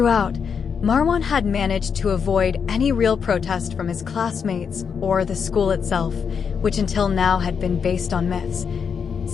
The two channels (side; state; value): right; quieter; 6.6 dB